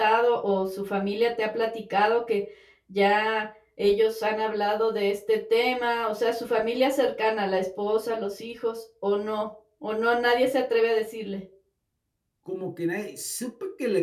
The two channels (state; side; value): identical; both; correlation 1.00